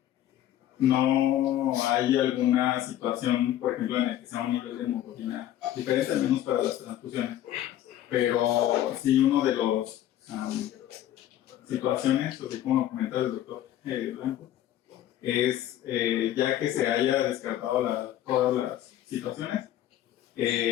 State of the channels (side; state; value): right; quieter; 12.3 dB